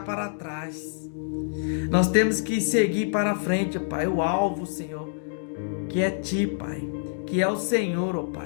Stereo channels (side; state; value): right; silent; digital silence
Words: para trás. Nós temos que seguir para frente, ó Pai, o alvo, Senhor, que é Ti, Pai, que é o Senhor, ó